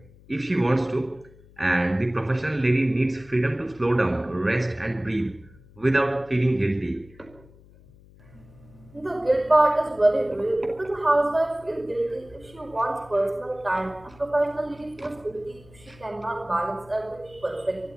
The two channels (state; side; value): noise; left; hum, 24 dB below the sound